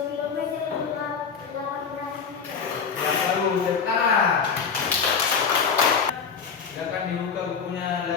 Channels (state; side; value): quieter; right; 6.1 dB